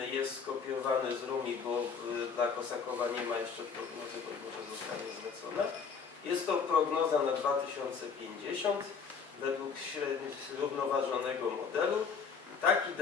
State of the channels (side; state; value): right; quieter; 5.8 dB